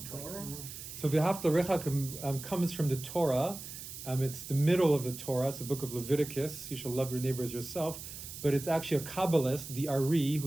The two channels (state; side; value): noise; right; hiss, 11 dB below the sound